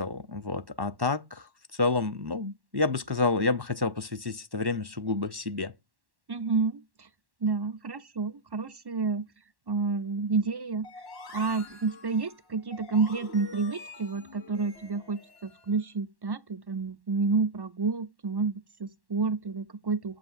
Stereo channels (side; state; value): left; late; 1.1 ms